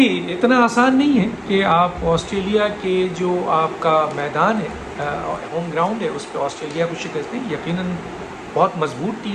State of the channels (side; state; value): both; identical; correlation 1.00